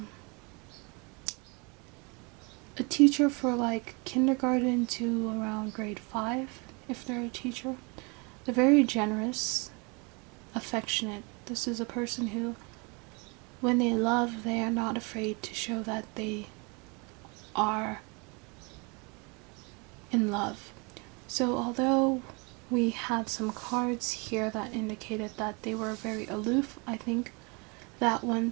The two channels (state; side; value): quieter; left; 30.6 dB